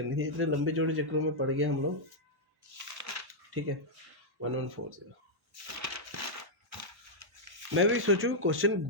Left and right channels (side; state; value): left; late; 1.1 ms